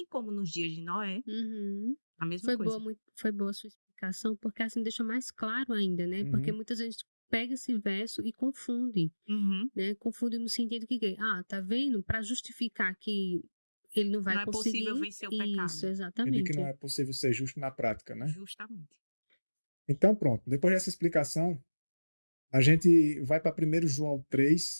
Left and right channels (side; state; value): both; inverted; correlation -1.00